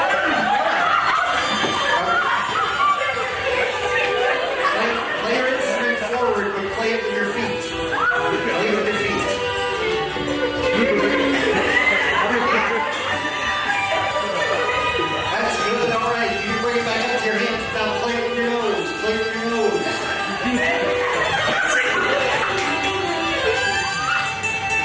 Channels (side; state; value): both; identical; correlation 1.00